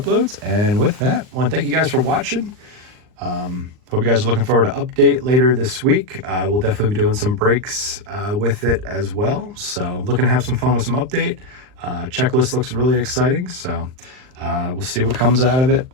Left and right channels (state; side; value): late; left; 39 ms